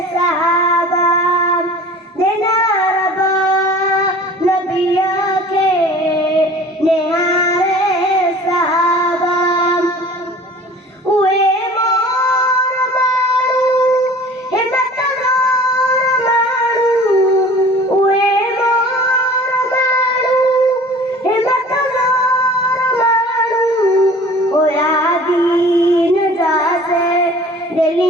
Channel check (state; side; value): normal; both; correlation 0.45